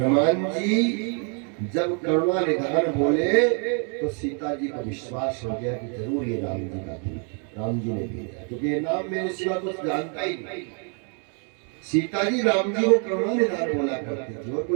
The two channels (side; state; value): left; quieter; 39.8 dB